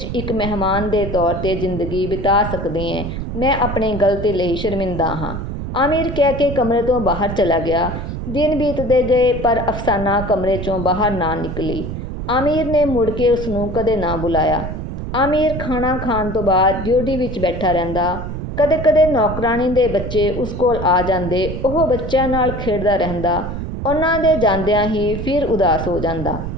ਇੱਕ ਮਹਿਮਾਨ ਦੇ ਤੌਰ 'ਤੇ ਜ਼ਿੰਦਗੀ ਬਿਤਾ ਸਕਦੀ ਹੈ। ਮੈਂ ਆਪਣੀ ਗਲਤੀ ਲਈ ਸ਼ਰਮਿੰਦਾ ਹਾਂ। ਆਮਿਰ ਕਹਿ ਕੇ ਕਮਰੇ ਤੋਂ ਬਾਹਰ ਚਲਾ ਗਿਆ। ਦਿਨ ਬੀਤਦੇ ਗਏ ਪਰ ਅਫਸਾਨਾ ਕਮਰੇ 'ਚੋਂ ਬਾਹਰ ਨਾ ਨਿਕਲੀ। ਆਮਿਰ ਨੇ ਮੁੜ ਕੇ ਉਸਨੂੰ ਕਦੇ ਨਾ ਬੁਲਾਇਆ। ਆਮਿਰ ਖਾਣਾ ਖਾਣ ਤੋਂ ਬਾਅਦ ਡਿਊਟੀ ਵਿੱਚ ਬੈਠਾ ਰਹਿੰਦਾ। ਕਦੇ-ਕਦੇ ਨੌਕਰਾਣੀ ਦੇ ਬੱਚੇ ਉਸ ਕੋਲ ਆ ਜਾਂਦੇ। ਉਹ ਬੱਚਿਆਂ ਨਾਲ ਖੇਡਦਾ ਰਹਿੰਦਾ। ਉਹਨਾਂ ਦੇ ਜਾਂਦਿਆਂ ਹੀ ਫਿਰ ਉਦਾਸ ਹੋ ਜਾਂਦਾ।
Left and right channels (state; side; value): noise; right; rumble, 6 dB below the sound